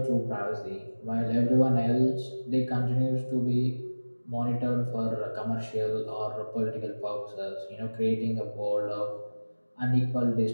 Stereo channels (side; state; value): both; inverted; correlation -1.00